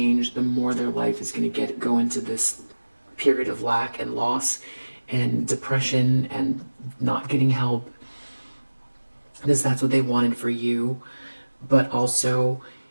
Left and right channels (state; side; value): inverted; both; correlation -1.00